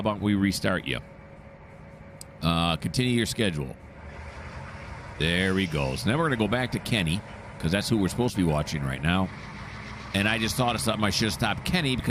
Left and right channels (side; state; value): both; identical; correlation 1.00